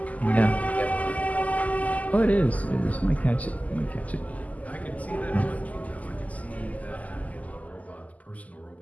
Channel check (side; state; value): right; late; 0.075 ms